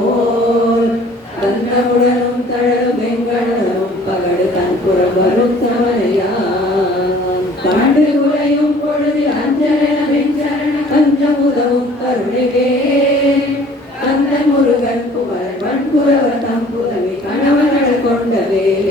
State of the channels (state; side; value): normal; both; correlation 0.53